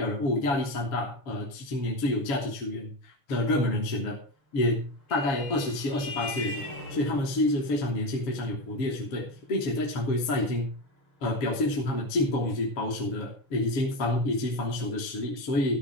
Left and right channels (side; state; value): right; late; 7.2 ms